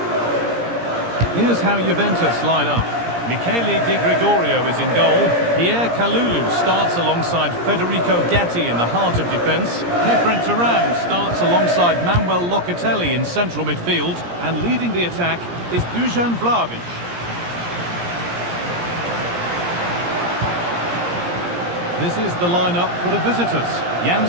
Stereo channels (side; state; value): left; late; 17 ms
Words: Here's how Juventus line up. Michele Di Gregorio is in goal. Pierre Kalulu starts alongside Federico Gatti in the heart of defence. Kefren Turan starts alongside Manuel Locatelli in central midfield. And leading the attack is Dusan Vlahovic. This is the lineup for the visitors. Jan